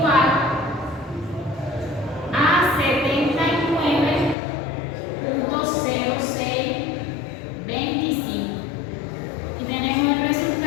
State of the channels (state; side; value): drops out; right; at 4.4 s